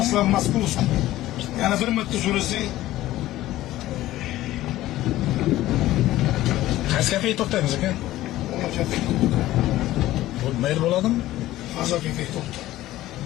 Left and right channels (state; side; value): quieter; right; 15.5 dB